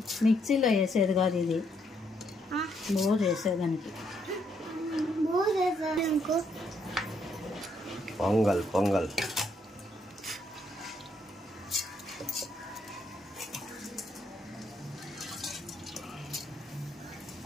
మిక్సీలో వేసేది కాదు, ఇది లో చేసేదానికి. పొంగల్ పొంగల్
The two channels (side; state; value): both; normal; correlation 0.74